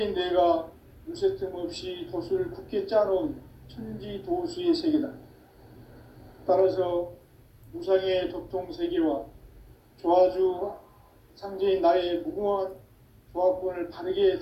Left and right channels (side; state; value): both; identical; correlation 1.00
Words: 내가 무쇠 틈 없이 도수를 굳게 짜놓은 천지도수의 세계다. 따라서 무상의 도통세계와 조화주 상제인 나의 무궁한 조화권을 바르게